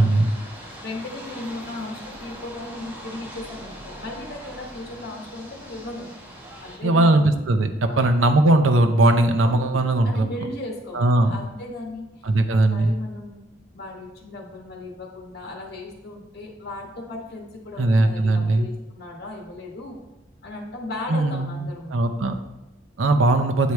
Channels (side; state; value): both; normal; correlation 0.66